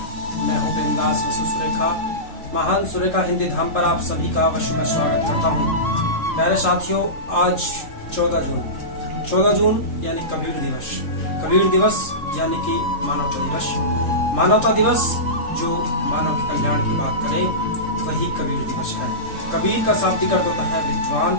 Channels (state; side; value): late; right; 3.7 ms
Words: मैं हूं प्रेमदास वसु सुरेखा। महान सुरेखा हिंदी धाम पर आप सभी का अवश्य मैं स्वागत करता हूं। प्यारे साथियों, आज 14 जून यानी कबीर दिवस। कबीर दिवस यानी कि मानवता दिवस। मानवता दिवस जो मानव के कल्याण की बात करे वही कबीर दिवस है। कबीर का शाब्दिक अर्थ होता है विद्वान